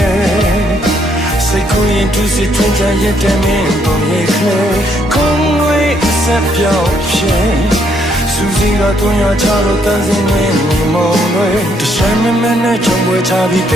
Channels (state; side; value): normal; both; correlation 0.71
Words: စိတ်ကိုရင်သူစစ်ထွန်းချရတဲ့မင်းပုံရိပ်ခလေခုံးဝေးဆက်ပြောင်းဖြစ်စူစီကတွန်းရချလို့တန်းစင်းနေမိမောင်တွေတခြားမမနဲ့ချုံပွဲချပြီးတ